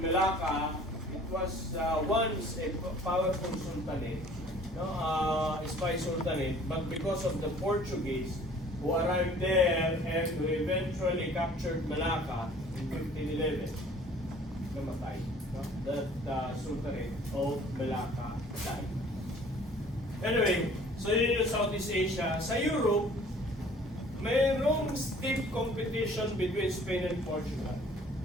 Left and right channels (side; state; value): both; normal; correlation 0.52